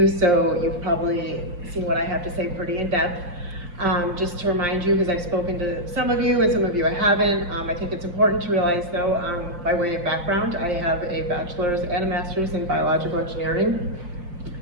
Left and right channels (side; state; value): left; late; 5.7 ms